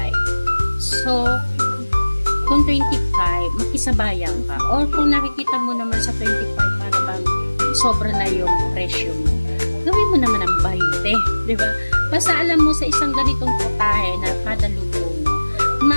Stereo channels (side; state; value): both; inverted; correlation -1.00